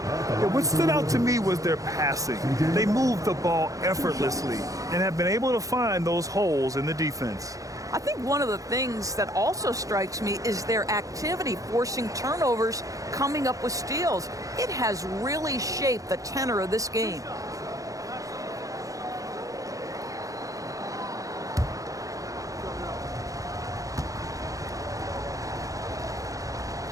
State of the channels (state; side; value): late; left; 0.16 ms